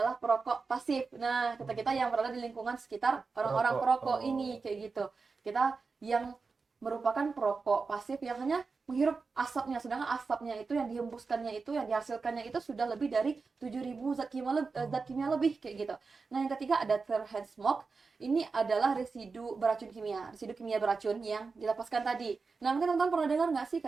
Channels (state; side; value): quieter; left; 4.5 dB